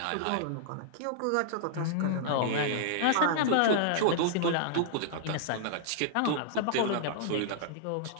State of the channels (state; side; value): different; both; correlation -0.01